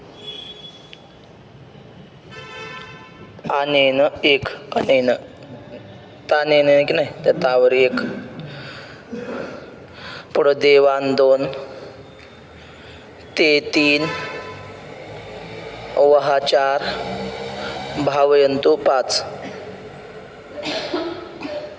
अनेन एक, अनेन तानेन की नाही, त्या तावर एक, पुढं देवान दोन, ते तीन, वहा चार, भावयंतु पाच.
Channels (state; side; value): identical; both; correlation 1.00